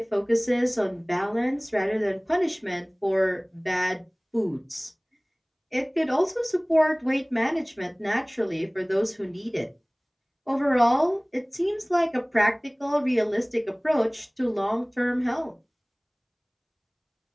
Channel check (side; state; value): both; identical; correlation 1.00